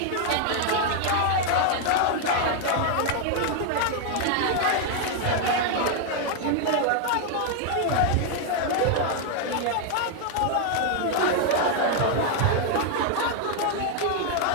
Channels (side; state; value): both; different; correlation 0.00